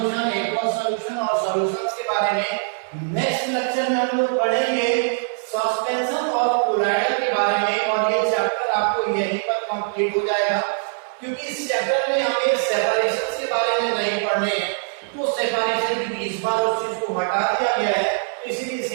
aqueous solution और सॉल्यूशंस के बारे में नेक्स्ट लेक्चर में हम लोग पढ़ेंगे सस्पेंशन और कोलाइडर के बारे में, और ये चैप्टर आपको यहीं पर कंप्लीट हो जाएगा क्योंकि इस चैप्टर में हमें सेपरेशंस के बारे में नहीं पढ़ने हैं। तो सेपरेशन क्योंकि इस बार उस चीज को हटा दिया गया है तो इसलिए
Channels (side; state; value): left; silent; 64 dB below the other